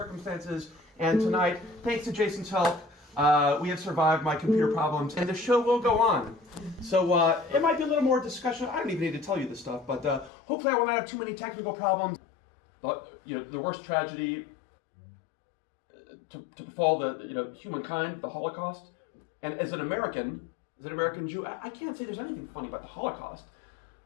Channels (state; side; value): drops out; right; at 10.3 s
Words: And tonight, thanks to Jason's help, we have survived my computer problems, and the show will go on. So it might be a little more discussion. I don't even need to tell you this stuff, but hopefully I will not have too many technical problems. But, the worst tragedy to befall the humankind, the Holocaust. And as an American Jew, I can't say there's anything funny about the Holocaust.